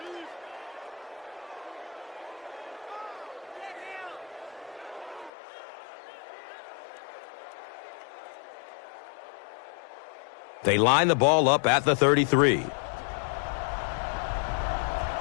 They line the ball up at the 33.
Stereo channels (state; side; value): drops out; right; at 5.3 s